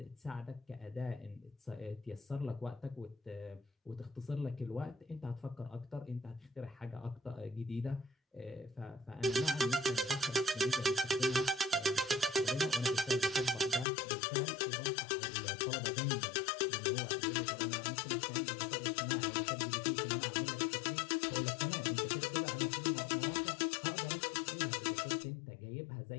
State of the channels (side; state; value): right; drops out; at 13.9 s